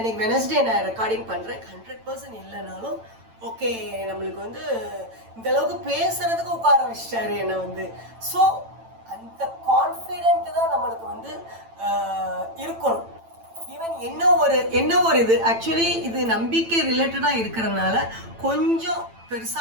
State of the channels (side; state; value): left; late; 8.9 ms